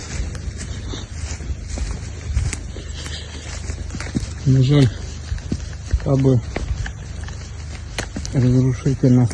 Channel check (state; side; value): identical; both; correlation 1.00